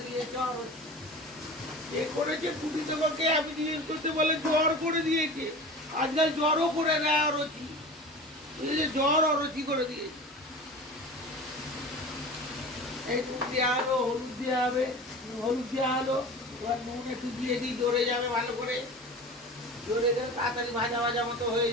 দিয়েছে অরুচি। এ করেছে ছুটি তোমাকে, আমি জিজ্ঞেস করতে বলে জ্বর করে দিয়েছে। আজকাল জ্বরও করে দেয় অরুচি, জ্বর অরুচি করে দিয়েছে। এই নুন দেওয়া হলো, হলুদ দেওয়া হবে, হলুদ দেওয়া হলো, এবার নুন একটু দিয়ে দিই, জড়ে যাবে ভালো করে, জড়ে গেলে তাড়াতাড়ি ভাজা ভাজা মতো হয়ে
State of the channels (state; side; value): normal; both; correlation 0.35